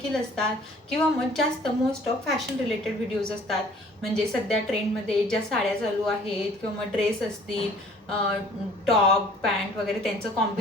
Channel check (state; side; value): normal; both; correlation 0.54